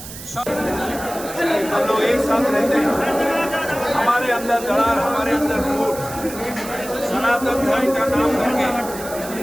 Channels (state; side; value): noise; right; hiss, 12 dB below the sound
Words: हम लोग एक साथ रहते हैं, हमारे अंदर दरार, हमारे अंदर फूट, सनातन धर्म का नाम करके